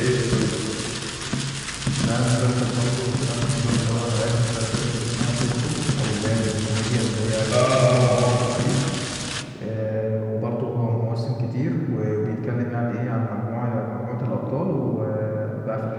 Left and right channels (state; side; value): identical; both; correlation 1.00